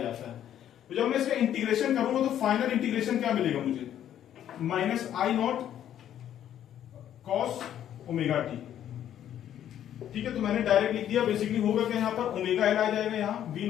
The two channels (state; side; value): quieter; right; 10.7 dB